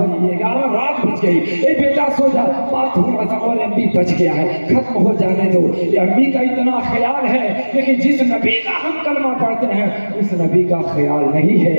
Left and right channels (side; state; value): both; inverted; correlation -1.00